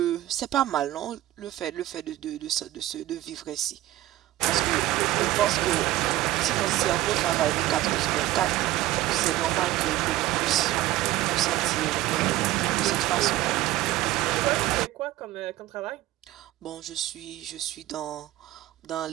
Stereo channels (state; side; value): quieter; left; 15.5 dB